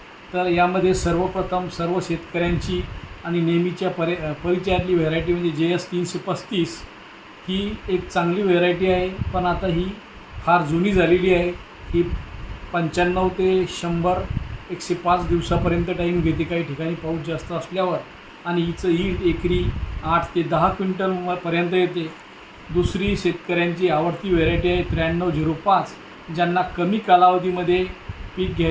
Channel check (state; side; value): identical; both; correlation 1.00